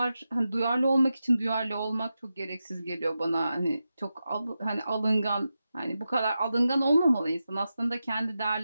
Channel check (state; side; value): inverted; both; correlation -0.91